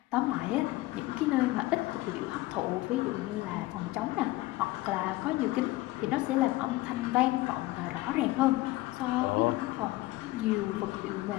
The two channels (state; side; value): quieter; right; 18.8 dB